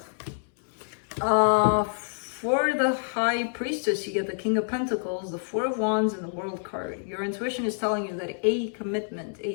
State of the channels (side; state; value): right; silent; 60 dB below the other